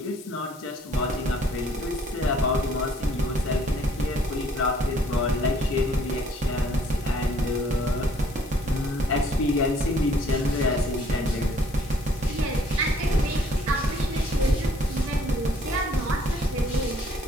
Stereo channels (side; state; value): left; noise; hiss, 20 dB below the sound